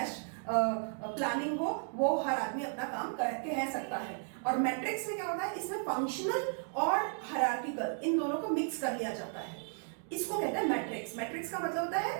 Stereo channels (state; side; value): silent; left; 55 dB below the other